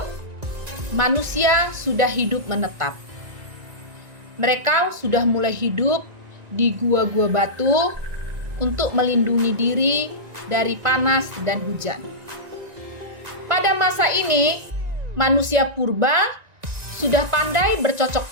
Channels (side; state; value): left; late; 1.9 ms